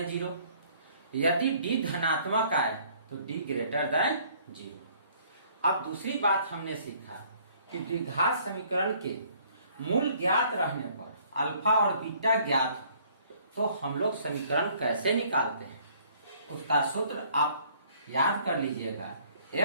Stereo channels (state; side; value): inverted; both; correlation -0.59